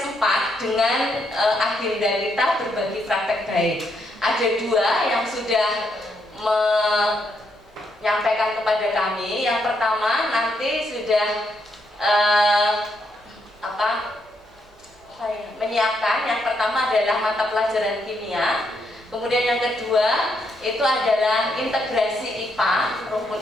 4 dengan agenda kita berbagi praktek baik. Ada 2 yang sudah menyampaikan kepada kami. Yang pertama nanti sudah menyiapkan. Yang pertama adalah mata pelajaran kimia. Kemudian yang kedua itu adalah integrasi IPA, rumpun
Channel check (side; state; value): both; normal; correlation 0.77